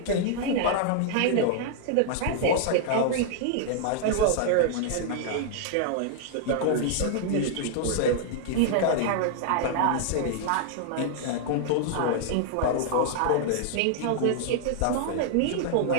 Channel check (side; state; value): both; different; correlation -0.01